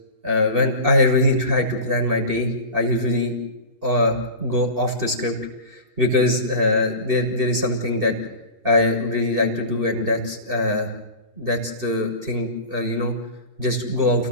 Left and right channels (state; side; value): late; left; 2.7 ms